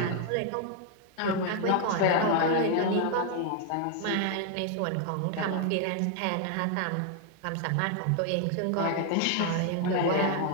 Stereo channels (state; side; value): different; both; correlation 0.00